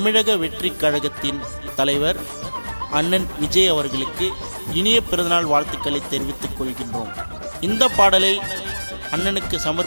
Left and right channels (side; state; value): both; inverted; correlation -1.00